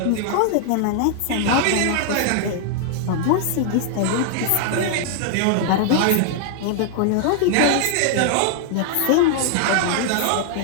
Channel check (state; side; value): different; both; correlation 0.00